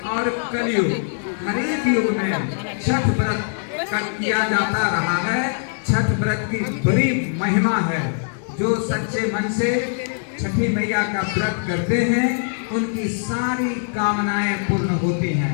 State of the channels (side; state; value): right; silent; digital silence